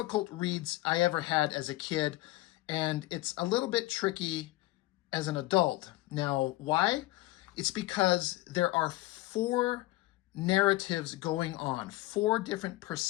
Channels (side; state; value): right; quieter; 18.8 dB